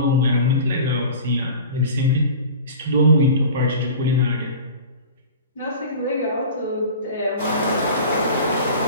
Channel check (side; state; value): both; inverted; correlation -0.38